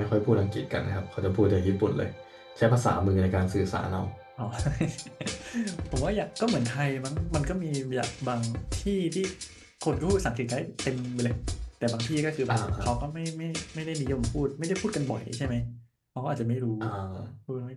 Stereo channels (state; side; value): identical; both; correlation 1.00